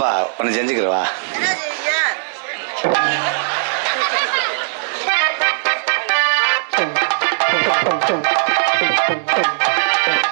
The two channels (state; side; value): silent; left; 67 dB below the other